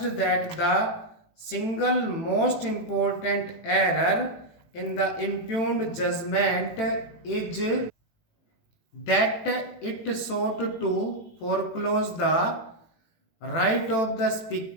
that the single most important error in the impugned judgment is that it sought to foreclose the right of the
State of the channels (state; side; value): late; right; 18 ms